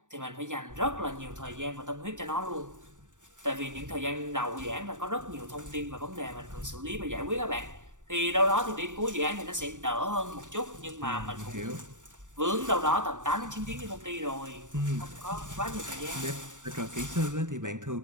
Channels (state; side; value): late; left; 0.86 ms